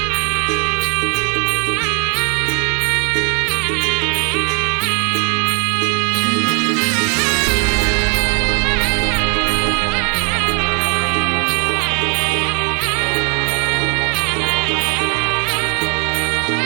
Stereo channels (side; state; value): left; quieter; 35.5 dB